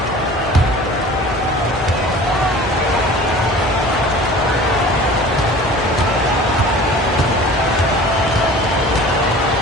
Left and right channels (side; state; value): both; normal; correlation 0.43